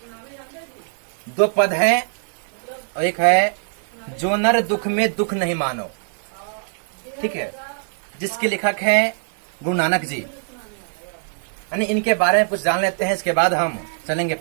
2 पद है और एक है जो नर दुख में दुख नहीं मानो। ठीक है, जिसके लेखक हैं गुरु नानक जी। यानी इनके बारे में कुछ जान लेते हैं, इसके बाद हम चलेंगे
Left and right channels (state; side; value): silent; left; digital silence